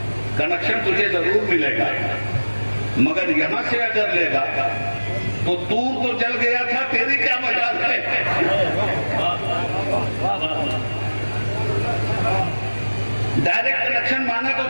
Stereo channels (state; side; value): inverted; both; correlation -1.00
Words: کنیکشن تجھے ضرور ملے گا، مگر یہاں سے اگر لے گا تو دور تو جل گیا تھا، تیری کیا مجال ہے؟ ڈائریکٹ کنیکشن مانا تو